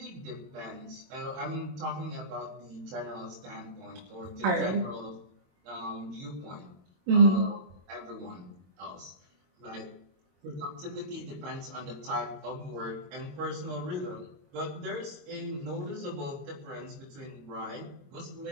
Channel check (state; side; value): late; left; 22 ms